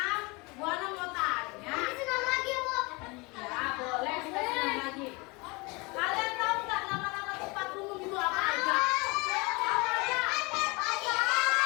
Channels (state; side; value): quieter; right; 26.6 dB